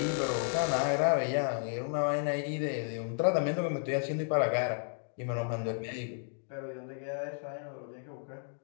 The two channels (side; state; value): right; silent; digital silence